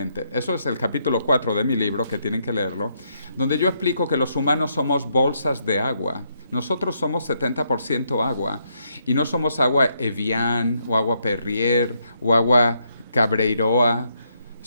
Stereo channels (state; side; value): inverted; both; correlation -0.76